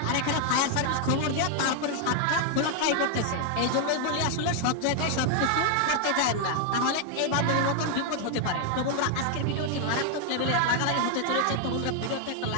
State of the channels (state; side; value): different; both; correlation 0.00